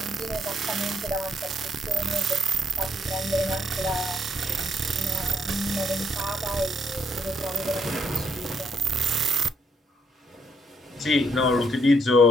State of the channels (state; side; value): normal; both; correlation 0.72